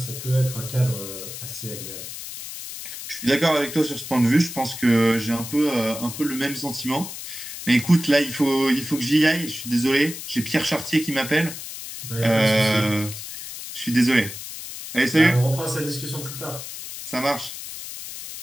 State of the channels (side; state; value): left; noise; hiss, 10 dB below the sound